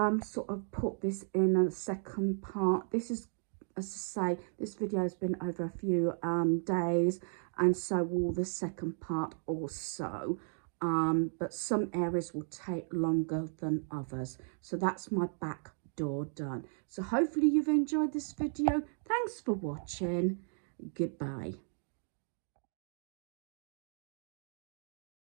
sort of put this in a second part. This is, as I say, this video has been over a few days, and so will the second part also. But some areas will take longer than others. So that's my back door done. So hopefully you've enjoyed this video. Thanks for watching. Goodbye.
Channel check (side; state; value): left; silent; 54 dB below the other